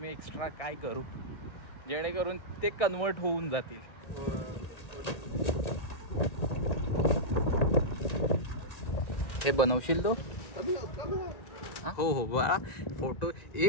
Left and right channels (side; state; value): right; late; 1.8 ms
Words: एक्स्ट्रा काय करू जेणेकरून ते कन्वर्ट होऊन जातील. हे बनवशील तो? हो हो बा.